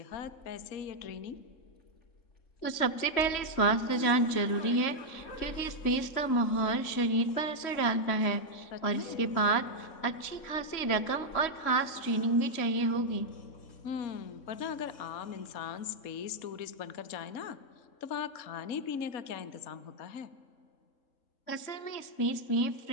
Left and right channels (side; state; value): right; late; 3.1 ms